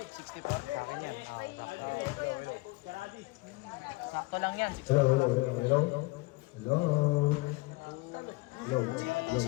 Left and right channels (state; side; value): quieter; right; 22.5 dB